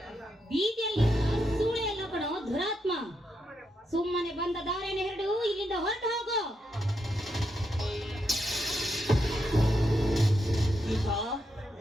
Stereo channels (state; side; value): normal; both; correlation 0.82